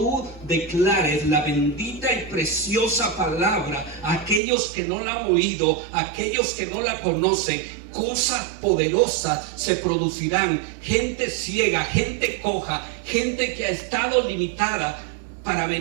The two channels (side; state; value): left; drops out; at 4.4 s